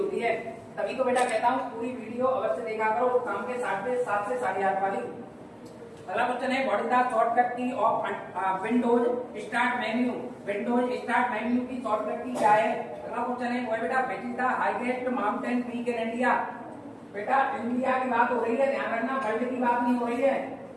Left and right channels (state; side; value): identical; both; correlation 1.00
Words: है। तभी तो बेटा कहता हूँ पूरी वीडियो अवश्य देखा करो, वो काम के 7 से 8 वाली। अगला क्वेश्चन है व्हाट इज द शॉर्टकट की of Windows start menu, Windows start menu की शॉर्टकट की क्या है। अगला क्वेश्चन है वो है बेटा विच is the highest mountain peak in India, बेटा इंडिया की बात हो रही है, ध्यान रखना वर्ल्ड की बात नहीं हो रही है।